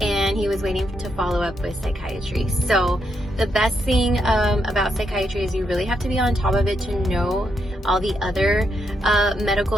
And he was waiting to follow up with psychiatry. So the best thing about psychiatry is you really have to be on top of it to know all the other medical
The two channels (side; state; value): both; normal; correlation 0.80